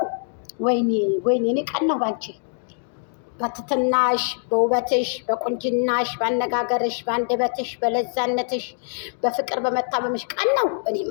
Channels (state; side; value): silent; right; 60 dB below the other